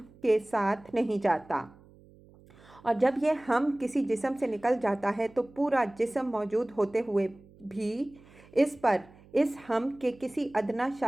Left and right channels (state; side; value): noise; right; hum, 25 dB below the sound